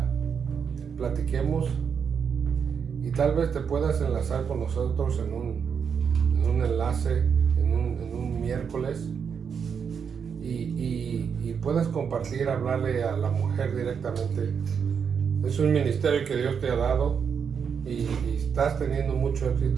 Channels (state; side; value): quieter; left; 6.8 dB